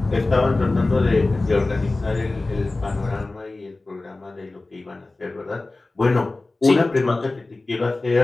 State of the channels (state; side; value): quieter; right; 3.2 dB